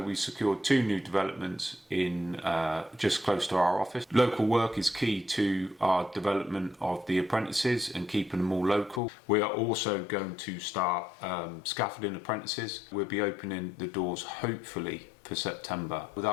we secured two new developments in just close to our office. Local work is key to our development of the apprentices and keeping them all local. We are also going to start Scaffolding Apprentices. We'll be opening the doors hopefully for September.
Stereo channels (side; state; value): right; drops out; at 9.0 s